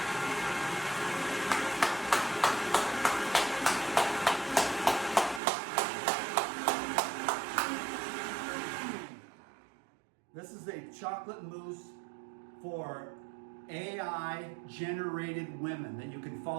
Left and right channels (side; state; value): left; drops out; at 5.4 s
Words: This is a chocolate mousse for AI generated women that you can